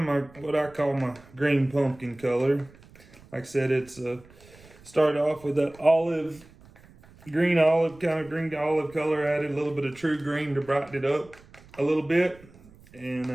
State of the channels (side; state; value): right; noise; rumble, 24 dB below the sound